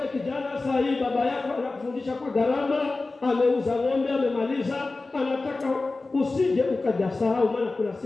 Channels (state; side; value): quieter; right; 3.5 dB